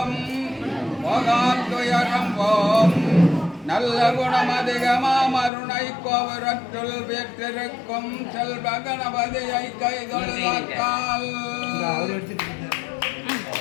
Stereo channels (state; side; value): drops out; right; at 5.5 s